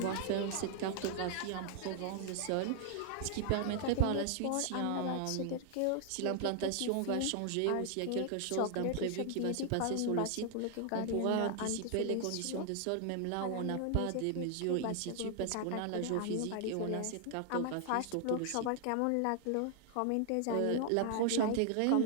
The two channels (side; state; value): both; different; correlation 0.00